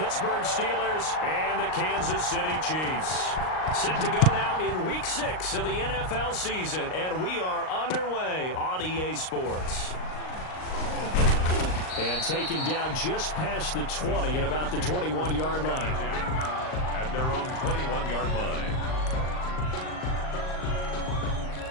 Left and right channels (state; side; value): late; right; 38 ms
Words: Steelers and the Kansas City Chiefs. Set to go now in Week 6 of the NFL season, and we are underway on EA Sports. And taken down just past the 20 at about the 21-yard line. At their own 21-yard line.